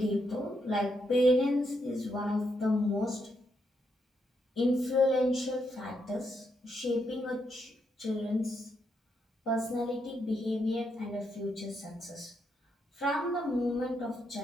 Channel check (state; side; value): normal; both; correlation 0.79